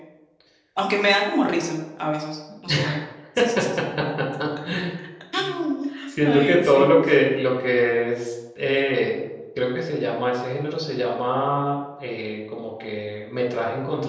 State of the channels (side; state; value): both; identical; correlation 1.00